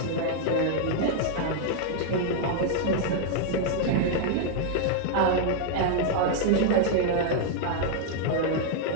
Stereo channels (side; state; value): both; different; correlation 0.00